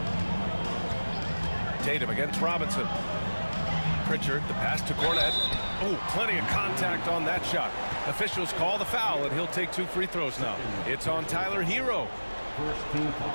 Tatum against Robinson. Pritchard, the pass to Cornett. Oh, plenty of contact on that shot. Officials call the foul, and he'll take 2 free throws now. It's on Tyler Hero.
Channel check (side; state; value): both; inverted; correlation -1.00